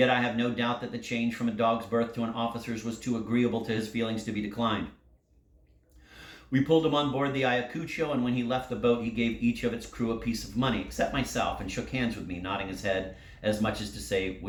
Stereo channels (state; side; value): identical; both; correlation 1.00